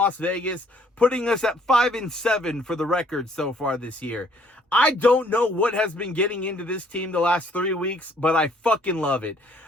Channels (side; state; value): both; normal; correlation 0.62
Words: Vegas, putting us at 5-7 for the record so far this year. I don't know what has been getting into this team the last 3 weeks, but I fucking love it.